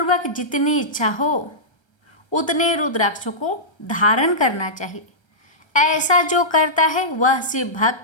जितनी इच्छा हो उतने रुद्राक्षों को धारण करना चाहिए। ऐसा जो करता है वह शिव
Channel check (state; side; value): late; right; 1.3 ms